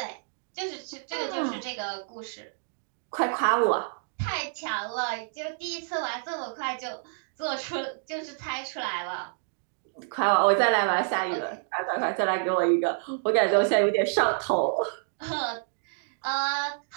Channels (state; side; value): silent; left; digital silence